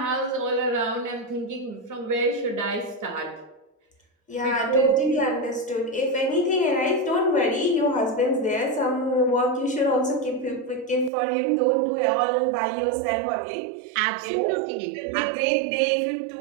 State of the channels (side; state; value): left; drops out; at 11.1 s